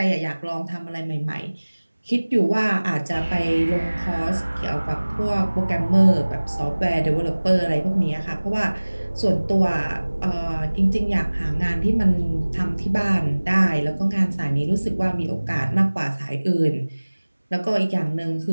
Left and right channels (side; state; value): both; inverted; correlation -1.00